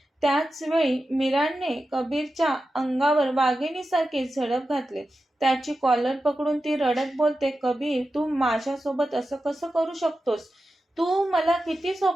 त्याचवेळी मीराने कबीरच्या अंगावर वाघिणीसारखी झडप घातली. त्याची कॉलर पकडून ती रडत बोलते, कबीर, तू माझ्यासोबत असं कसं करू शकतोस? तू मला किती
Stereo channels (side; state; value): both; normal; correlation 0.92